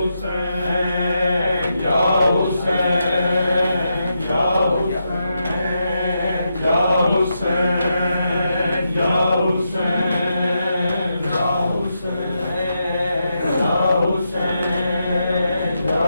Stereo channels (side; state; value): both; inverted; correlation -0.84